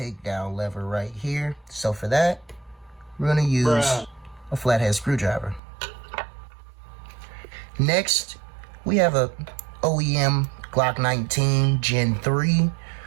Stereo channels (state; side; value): drops out; left; at 5.6 s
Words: lever right here. So for that, we're going to use a flathead screwdriver. Next, we have a OEM Glock 19 Gen 3